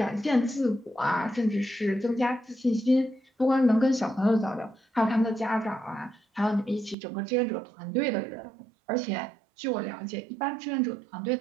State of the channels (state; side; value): drops out; left; at 7.0 s